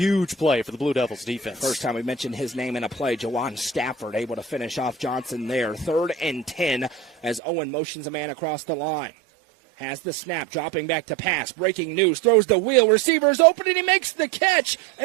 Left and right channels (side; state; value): left; drops out; at 7.4 s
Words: play for the Blue Devils defense. First time we mentioned his name in a play, Jawan Stafford able to finish off Johnson there. 3rd and 10 as Owen motions a man across the line. Has the snap, dropping back to pass. Breaking news, throws the wheel. Receiver's open, and he makes the catch,